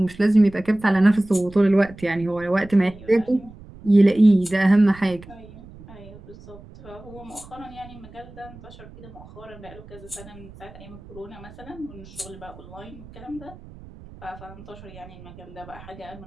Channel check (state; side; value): noise; right; rumble, 19 dB below the sound